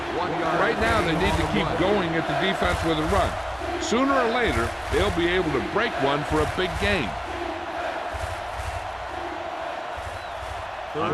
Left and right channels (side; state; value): both; identical; correlation 1.00